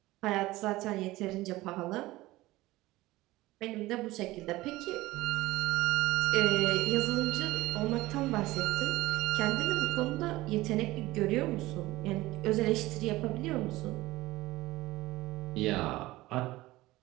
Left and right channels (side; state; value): left; quieter; 18.5 dB